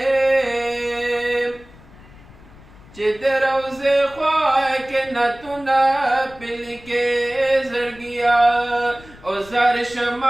چې د روضې خوا کې نعتونه پرې لیکې زړګیا او زار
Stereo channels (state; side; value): noise; left; rumble, 22 dB below the sound